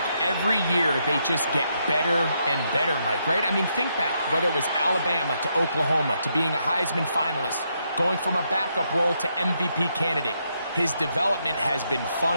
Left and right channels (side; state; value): both; inverted; correlation -0.78